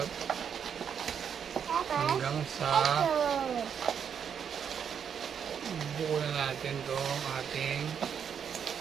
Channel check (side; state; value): left; quieter; 7.7 dB